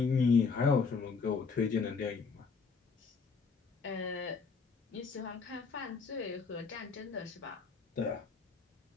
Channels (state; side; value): quieter; right; 5.1 dB